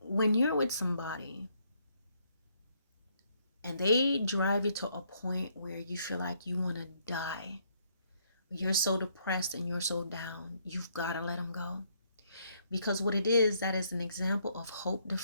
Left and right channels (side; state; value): both; inverted; correlation -0.71